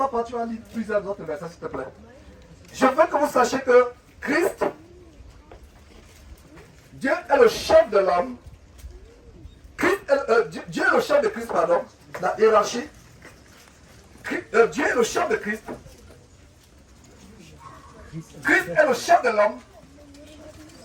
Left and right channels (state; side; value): identical; both; correlation 1.00